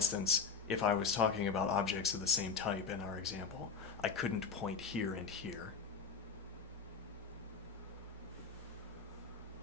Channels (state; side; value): quieter; right; 5.2 dB